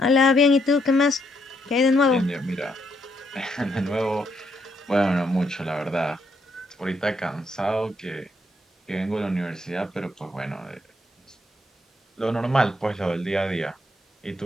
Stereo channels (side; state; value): both; normal; correlation 0.75